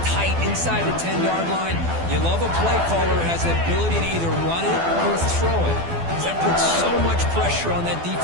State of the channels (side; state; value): left; late; 12 ms